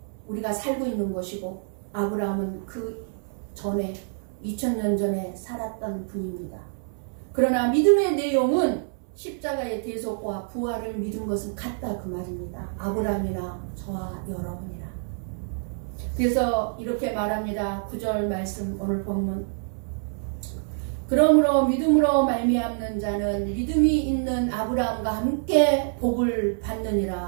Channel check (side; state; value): left; silent; 61 dB below the other